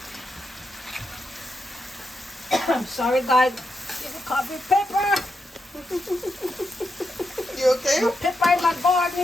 I'm sorry, guys. Give me coffee pepper. You okay? The pepper in my garden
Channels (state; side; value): normal; both; correlation 0.84